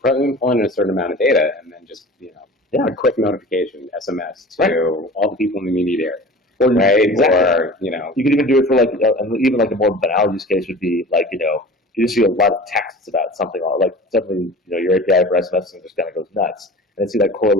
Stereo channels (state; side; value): normal; both; correlation 0.39